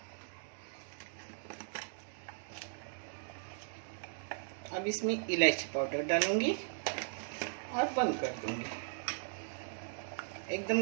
अब इसमें इलायची पाउडर डालूंगी और बंद कर दूंगी। एकदम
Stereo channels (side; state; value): left; silent; 52 dB below the other